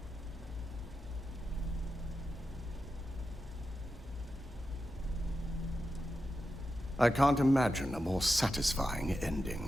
I can't imagine a more satisfying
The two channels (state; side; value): normal; both; correlation 0.90